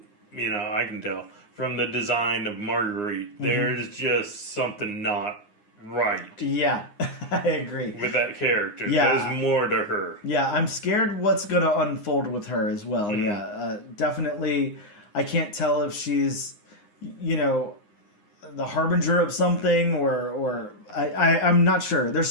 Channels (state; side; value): late; right; 9.7 ms